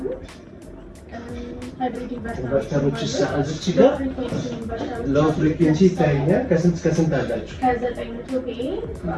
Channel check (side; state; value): both; identical; correlation 1.00